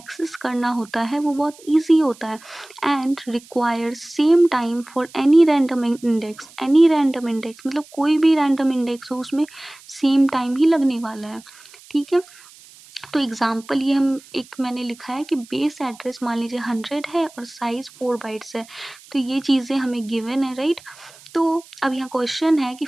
करना होता है वो बहुत ईजी होता है। And require same time for any random index, any random index मतलब कोई भी रैंडम इंडेक्स हो उसमें सेम टाइम ही लगने वाला है, ठीक है। तो एग्जाम्पल ये हम एक मैंने लिखा है कि बेस एड्रेस मान लीजिए 100 है और साइज 4 बाइट्स है, तो ये चीज़ें हमें गिवन है, राइट। तो अब यहाँ क्वेश्चन है कि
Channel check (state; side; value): noise; right; hiss, 23 dB below the sound